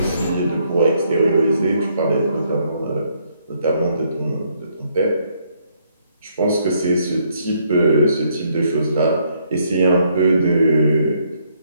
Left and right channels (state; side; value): inverted; both; correlation -0.71